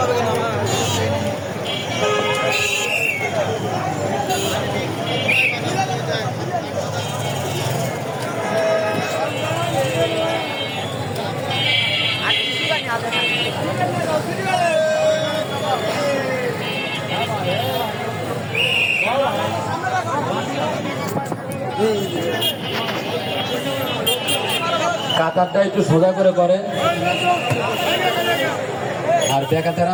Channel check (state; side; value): identical; both; correlation 1.00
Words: কাতারটা একটু সোজা করে করে, আর বেকাতেরা